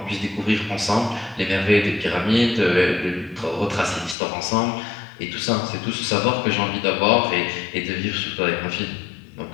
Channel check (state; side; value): drops out; right; at 4.2 s